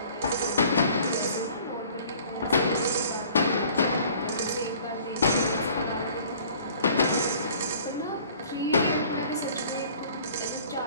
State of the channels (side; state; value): both; inverted; correlation -0.52